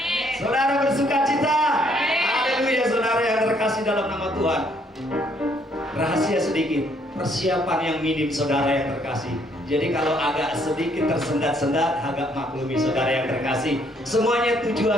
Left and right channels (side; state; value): both; normal; correlation 0.67